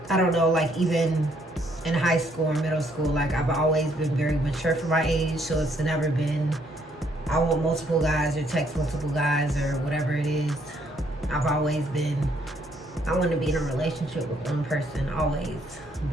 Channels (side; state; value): both; normal; correlation 0.69